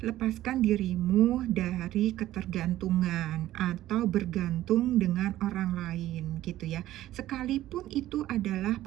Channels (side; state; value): left; quieter; 14.3 dB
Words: lepaskan dirimu dari ketergantungan atau bergantung dengan orang lain gitu ya. Sekalipun itu adalah